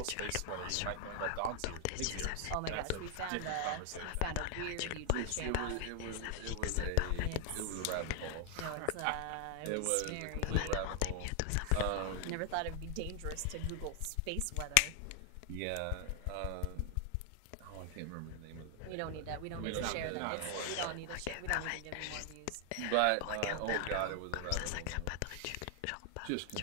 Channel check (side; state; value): both; different; correlation 0.00